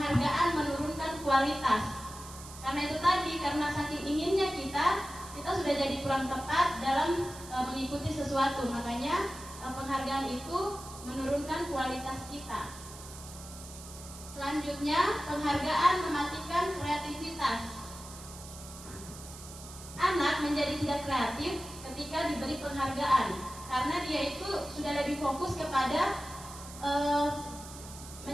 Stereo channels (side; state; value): right; noise; hiss, 15 dB below the sound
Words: menurunkan kualitas. Karena itu tadi, karena saking inginnya kita sudah jadi kurang tepat dalam mengikuti sesuatu. Makanya penghargaan itu menurunkan kualitas kita. Selanjutnya, penghargaan mematikan kreativitas. Anak menjadi tidak kreatif ketika diberi penghargaan, karena dia itu sudah lebih fokus kepada